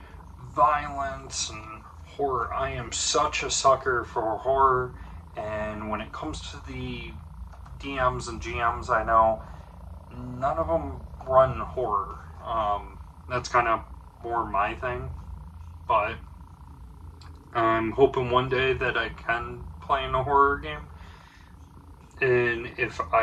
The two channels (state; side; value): identical; both; correlation 1.00